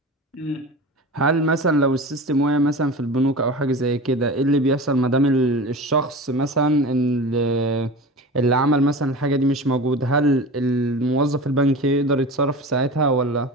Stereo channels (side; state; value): both; normal; correlation 0.32